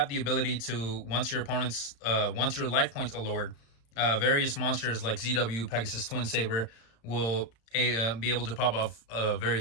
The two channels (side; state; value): right; late; 35 ms